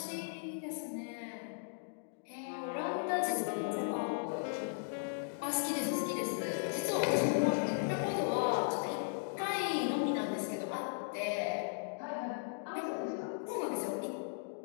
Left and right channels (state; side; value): silent; right; digital silence